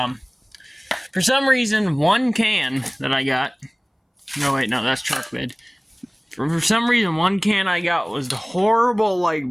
for some reason, 1 can that I got... No, wait, no, that's truck bed. For some reason, 1 can I got was the horrible, like,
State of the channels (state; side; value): identical; both; correlation 1.00